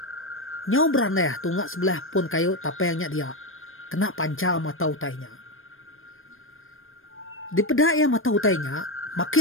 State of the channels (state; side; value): late; right; 0.59 ms